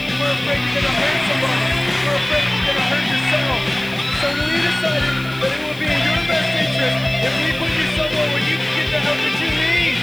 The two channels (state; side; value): noise; left; hiss, 22 dB below the sound